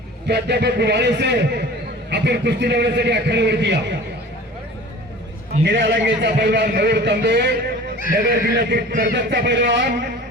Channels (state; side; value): normal; both; correlation 0.41